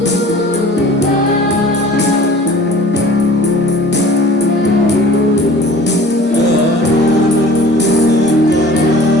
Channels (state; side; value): normal; both; correlation 0.46